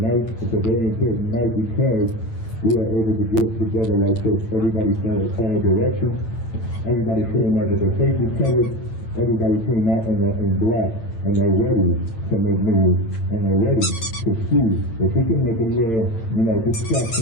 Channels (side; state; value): right; late; 8.8 ms